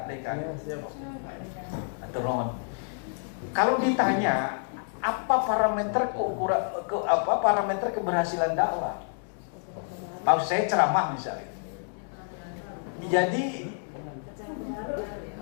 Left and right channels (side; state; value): right; silent; 59 dB below the other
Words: Dekan. Kalau ditanya apa parameter parameter keberhasilan dakwah, maksud saya ceramah misalnya. Jadi